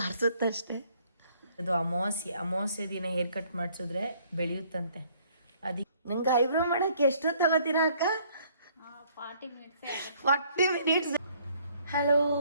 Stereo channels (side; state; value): both; inverted; correlation -0.62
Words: ಅದು ಅಮಾವಾಸ್ಯೆ ದಿನ ಹೇರ್ ಕಟ್ ಮಾಡಿಸಿದ್ರೆ ಬೆಳೆಯುತ್ತಂತೆ. ಅದಕ್ಕೆ ನಂಗೆ ಐಬ್ರೋ ಮಾಡೋಕ್ಕೆ ಎಷ್ಟೊತ್ತು ತಗೋತೀರಾ ಅಕ್ಕ? 40 minutes. Hello,